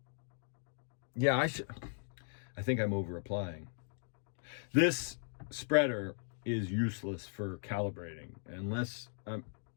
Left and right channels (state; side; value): silent; right; digital silence